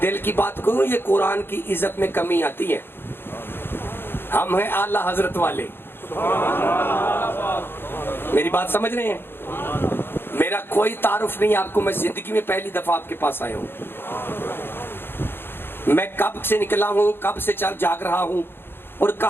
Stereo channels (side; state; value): right; late; 0.10 ms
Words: دل کی بات کروں, یہ قرآن کی عزت میں کمی آتی ہے. ہم ہیں اعلیٰ حضرت والے, میری بات سمجھ رہے ہیں. میرا کوئی تعارف نہیں آپ کو, میں زندگی میں پہلی دفعہ آپ کے پاس آیا ہوں. میں کب سے نکلا ہوں, کب سے چل جاگ رہا ہوں, اور